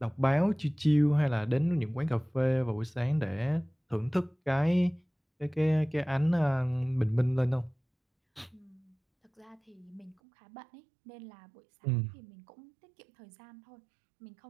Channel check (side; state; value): left; drops out; at 10.2 s